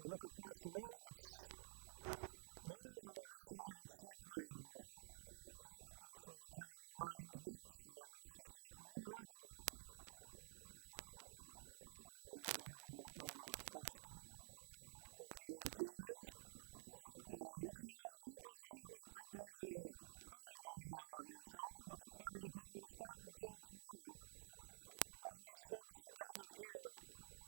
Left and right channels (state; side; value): silent; left; digital silence